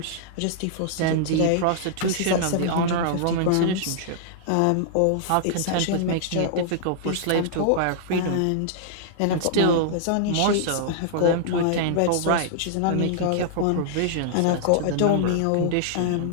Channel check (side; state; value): both; different; correlation -0.01